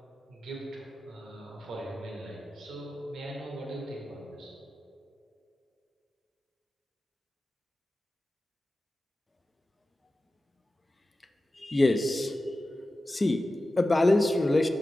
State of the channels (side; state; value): both; normal; correlation 0.94